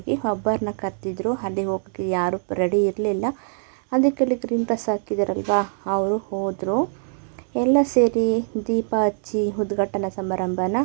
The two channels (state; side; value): silent; left; 63 dB below the other